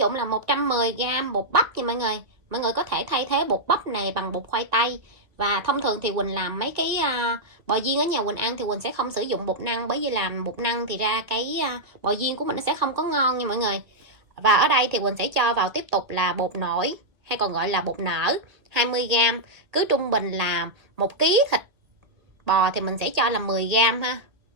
là 110g bột bắp nha mọi người. Mọi người có thể thay thế bột bắp này bằng bột khoai tây. Và thông thường thì Quỳnh làm mấy cái bò viên ở nhà Quỳnh ăn thì Quỳnh sẽ không sử dụng bột năng, bởi vì làm bột năng thì ra cái bò viên của mình nó sẽ không có ngon nha mọi người. Và ở đây thì Quỳnh sẽ cho vào tiếp tục là bột nổi, hay còn gọi là bột nở, 20g. Cứ trung bình là 1 kg thịt bò thì mình sẽ cho là 10g ha.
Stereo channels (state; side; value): late; left; 1.9 ms